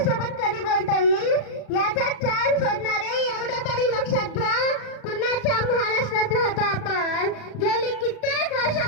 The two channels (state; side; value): late; right; 36 ms